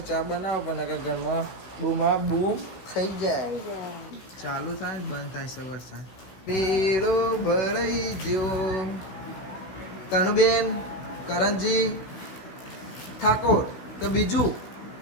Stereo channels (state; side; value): late; right; 16 ms